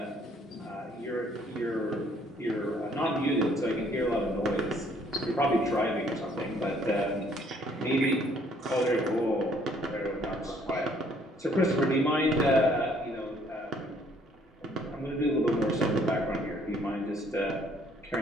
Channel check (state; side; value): normal; both; correlation 0.63